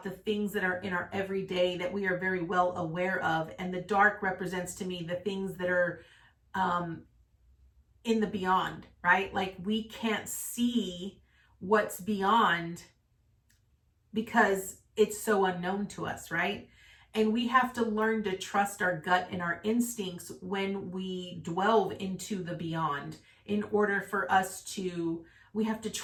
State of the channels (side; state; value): both; identical; correlation 1.00